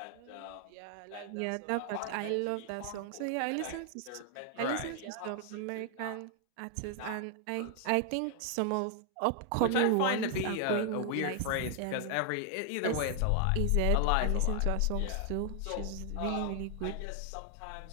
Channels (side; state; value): both; different; correlation 0.00